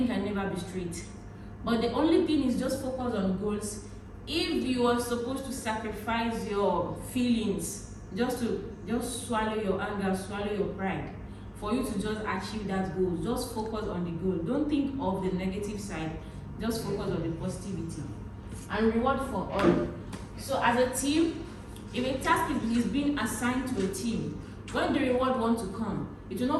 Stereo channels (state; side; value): identical; both; correlation 1.00